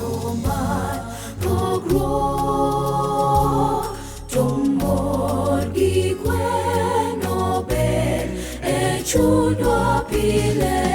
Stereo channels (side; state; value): both; identical; correlation 1.00